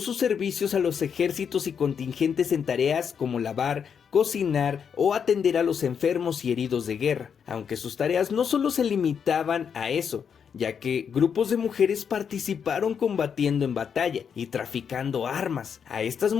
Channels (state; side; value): quieter; right; 7.2 dB